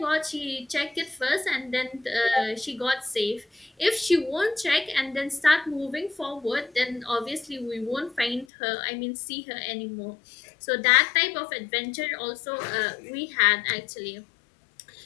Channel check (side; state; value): right; drops out; at 8.5 s